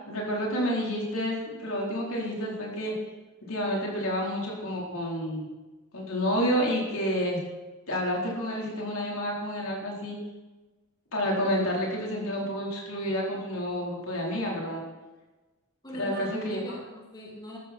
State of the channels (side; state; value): both; normal; correlation 0.14